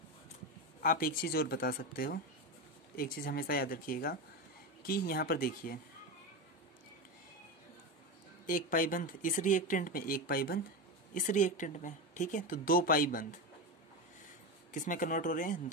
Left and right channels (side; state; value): both; normal; correlation 0.18